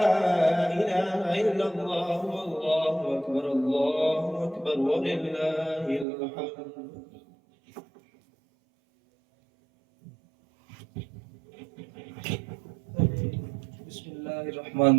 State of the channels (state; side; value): drops out; left; at 6.1 s